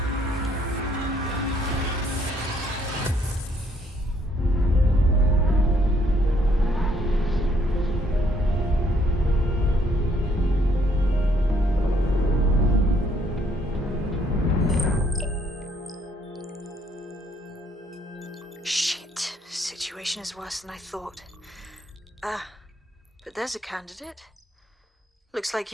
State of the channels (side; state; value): both; normal; correlation 0.67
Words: Is worse than I thought. But there's a candidate. Looks like